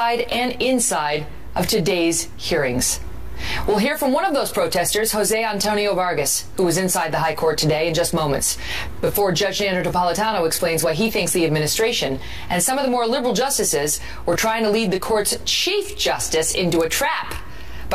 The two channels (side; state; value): both; identical; correlation 1.00